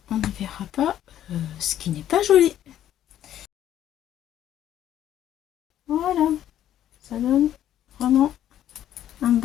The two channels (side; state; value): right; quieter; 11.5 dB